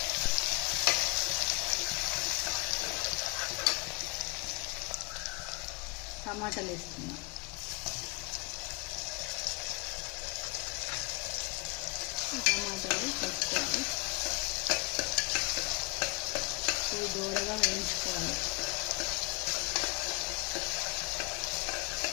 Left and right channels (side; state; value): right; quieter; 28.3 dB